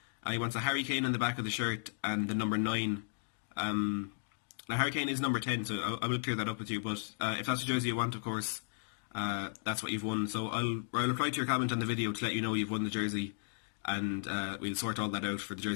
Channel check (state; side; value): silent; right; digital silence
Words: He wants a Harry Kane on the back of the shirt and the number 9. Now Harry Kane is number 10, so I will clear that up with you, but if that's the jersey you want, of course, that's what you've won. So I'll reply to your comment on the video to let you know you've won the jersey, and we'll sort all that out for the